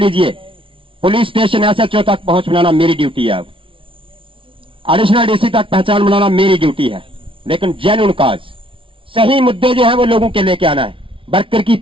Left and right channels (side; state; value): left; late; 0.25 ms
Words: पुलिस स्टेशन SHO तक पहुंच बनाना मेरी ड्यूटी है, एडिशनल DC तक पहचान बनाना मेरी ड्यूटी है। लेकिन जेन्युइन काज, सही मुद्दे जो है वो लोगों के लेके आना है। वर्कर की